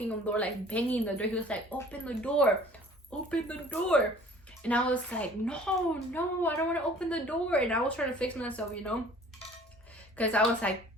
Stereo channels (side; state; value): both; normal; correlation 0.50